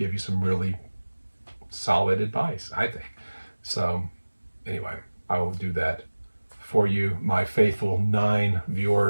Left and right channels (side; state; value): both; inverted; correlation -1.00